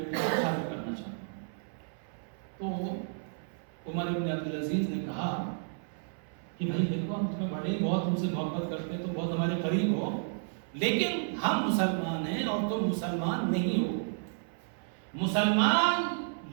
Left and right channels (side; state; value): left; silent; 57 dB below the other